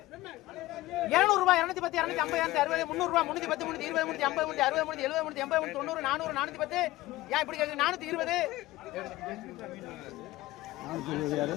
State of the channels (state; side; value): quieter; right; 17.5 dB